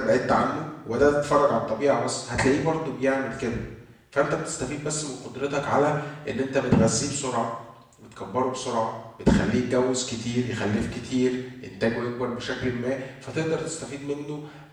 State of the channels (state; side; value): identical; both; correlation 1.00